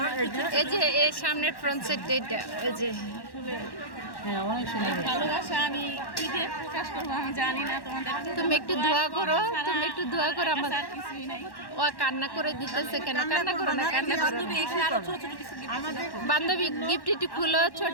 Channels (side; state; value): right; late; 1.1 ms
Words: এই যে এই সামনের ফ্রন্ট সাইড, এটা এই যে হ্যাঁ, অনেক সুন্দর হয়েছে। ভালোবাসা আমি কি দিয়ে প্রকাশ করবো আমি জানি না। তোমাদের তুমি একটু দোয়া করো, তুমি একটু দোয়া করো। আমার কিছুই নাই। ও কান্না করে দিতেছে কেন? কান্না করো না, কান্না করো না। বান্ধবী গিফট একটু খুলো,